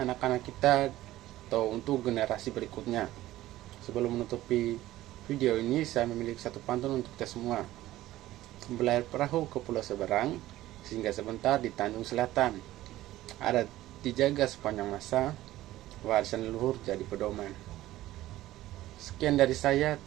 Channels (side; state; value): left; quieter; 15.5 dB